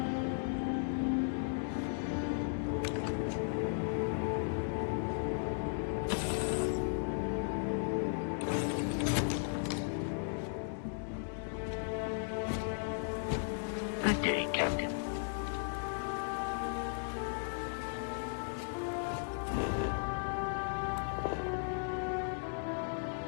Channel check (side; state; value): right; silent; digital silence